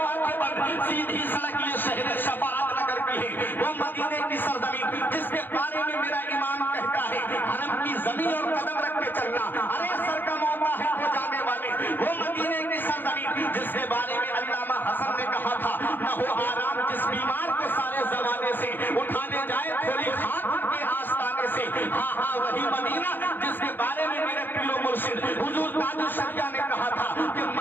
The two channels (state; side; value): late; right; 0.093 ms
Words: آنکھیں بند, سیدھی سڑک یہ شہر شفاعت نگر کی ہے. وہ مدینے کی سرزمین جس کے بارے میں میرا امام کہتا ہے حرم کی زمین اور قدم رکھ کے چلنا ارے سر کا موقع ہے ہو جانے والے. وہ مدینے کی سرزمین جس کے بارے میں علامہ حسن نے کہا تھا نہ ہو آرام جس بیمار کو سارے زمانے سے اٹھانے جائے تھوڑی خاک کے آستانے سے. ہاں ہاں وہی مدینہ جس کے بارے میں میرے پیر و مرشد حضور تاج الشریعہ نے کہا تھا کہ